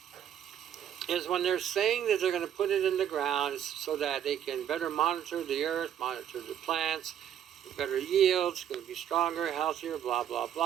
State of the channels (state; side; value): quieter; left; 9.7 dB